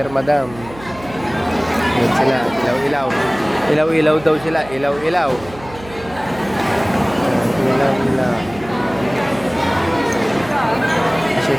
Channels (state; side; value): noise; right; hum, 18 dB below the sound